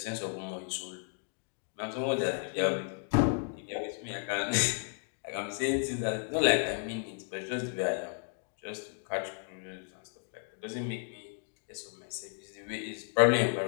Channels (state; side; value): silent; right; 55 dB below the other